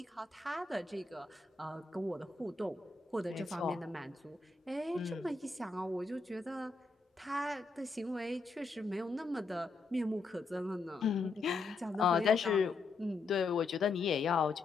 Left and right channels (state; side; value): quieter; right; 4.0 dB